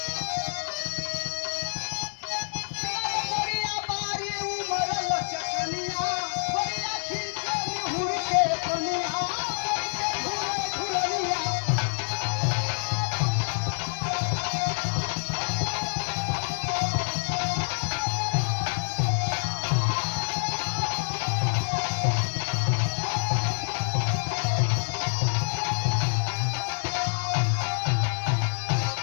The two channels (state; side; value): silent; right; 60 dB below the other